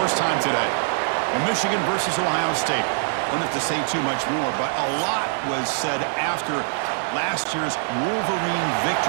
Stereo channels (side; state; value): left; silent; 59 dB below the other